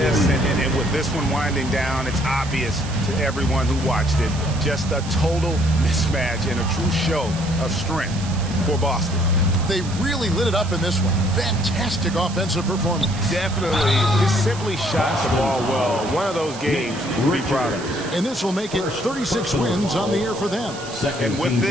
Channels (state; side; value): noise; right; hiss, 14 dB below the sound